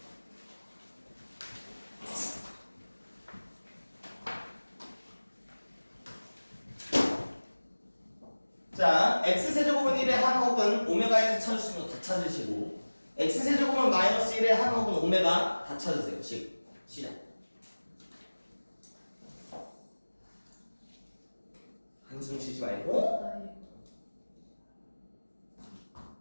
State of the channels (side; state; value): both; inverted; correlation -1.00